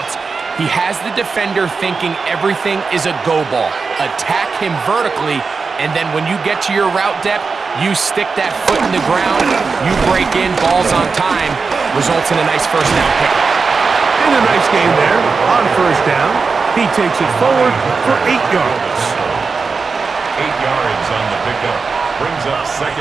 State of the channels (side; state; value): left; quieter; 4.7 dB